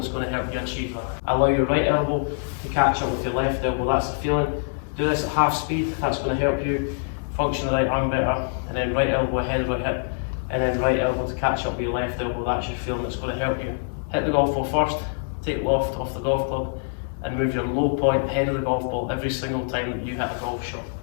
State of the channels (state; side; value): silent; right; digital silence